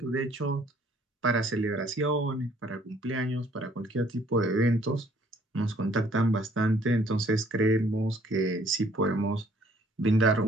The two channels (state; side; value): normal; both; correlation 0.61